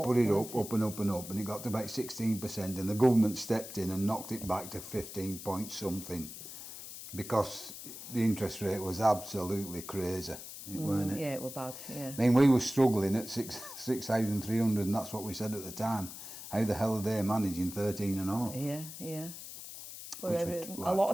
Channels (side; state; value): left; noise; hiss, 11 dB below the sound